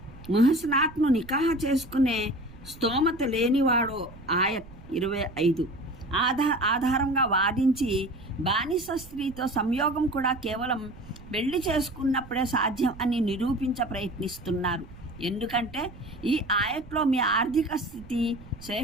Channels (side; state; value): right; noise; rumble, 18 dB below the sound